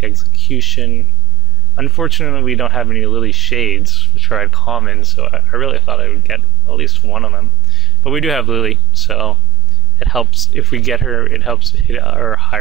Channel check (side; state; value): both; normal; correlation 0.23